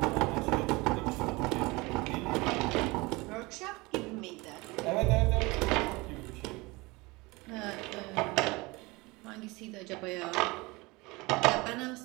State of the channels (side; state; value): left; quieter; 23.7 dB